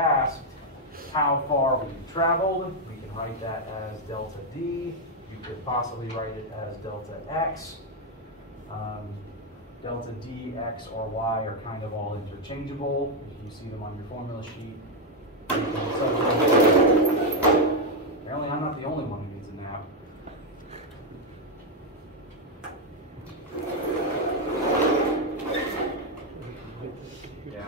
how far we've traveled. We can can write that as delta D. You could possibly write it as delta X. Delta D, X, or Y are kind of all interchangeable. If you see them on your formula sheet. Apparently I'm not the only one who needs a nap.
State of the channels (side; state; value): both; normal; correlation 0.03